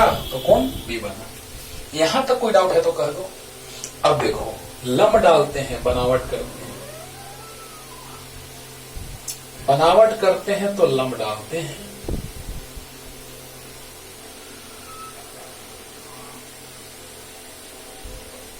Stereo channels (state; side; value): identical; both; correlation 1.00